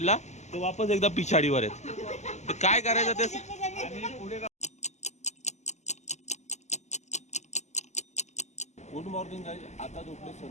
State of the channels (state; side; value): late; right; 0.33 ms